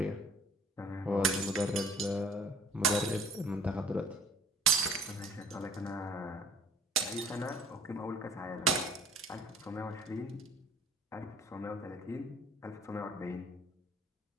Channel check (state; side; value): normal; both; correlation 0.51